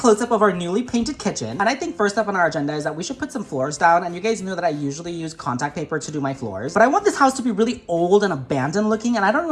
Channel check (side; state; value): both; identical; correlation 1.00